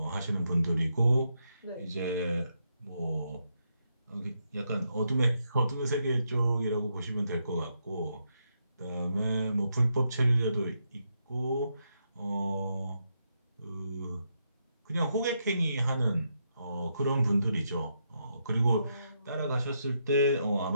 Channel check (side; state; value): both; inverted; correlation -0.81